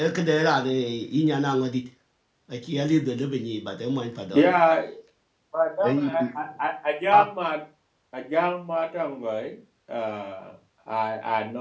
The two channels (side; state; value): both; identical; correlation 1.00